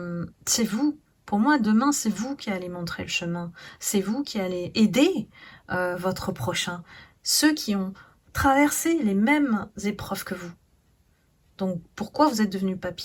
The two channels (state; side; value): identical; both; correlation 1.00